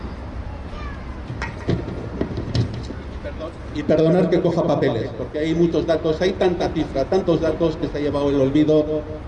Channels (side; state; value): both; identical; correlation 1.00